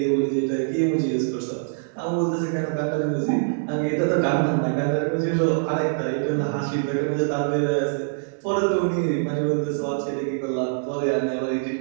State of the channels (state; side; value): silent; left; digital silence